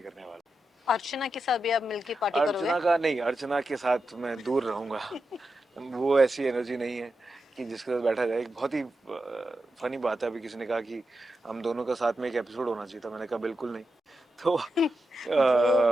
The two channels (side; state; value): both; normal; correlation 0.88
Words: करने वाला अर्चना के साथ भी आप मिलके पार्टी हूँ। करोगे? अर्चना का नहीं, अर्चना के साथ मैं दूर रहूँगा। वो ऐसी एनर्जी नहीं है कि जिसके साथ बैठा जाए। एक बहुत ही फनी बात है, अभी किसी ने कहा कि हम दोनों का साथ में एक एपिसोड होना चाहिए था, मैंने कहा बिल्कुल नहीं। तो